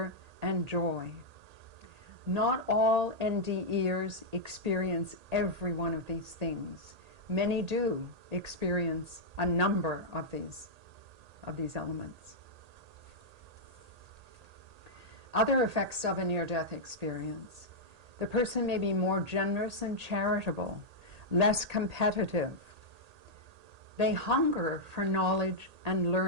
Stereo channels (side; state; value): left; late; 1.8 ms